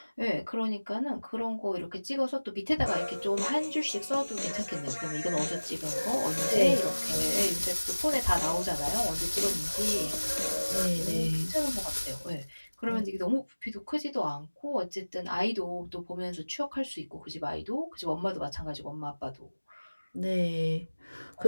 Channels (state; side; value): inverted; both; correlation -1.00